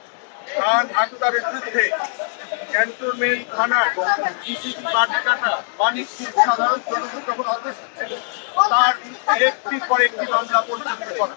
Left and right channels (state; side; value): silent; right; digital silence